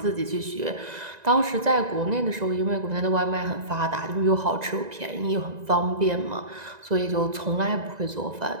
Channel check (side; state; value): left; late; 1.9 ms